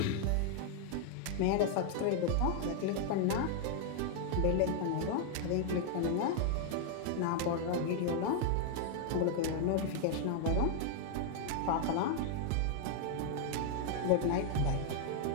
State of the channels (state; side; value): different; both; correlation 0.00